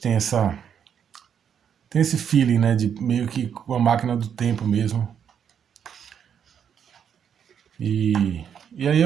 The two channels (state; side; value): quieter; left; 8.1 dB